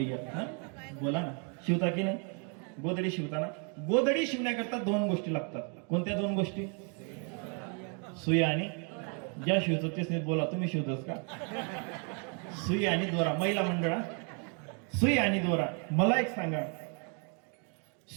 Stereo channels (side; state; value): left; quieter; 38.7 dB